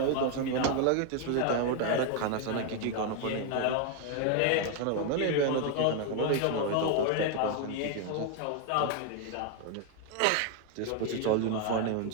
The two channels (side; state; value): both; different; correlation 0.01